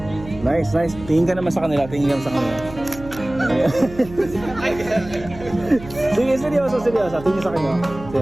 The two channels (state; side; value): noise; right; hum, 15 dB below the sound